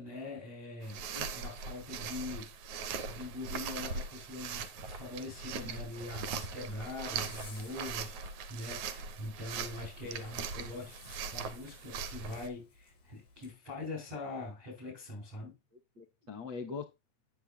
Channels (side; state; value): left; late; 9.3 ms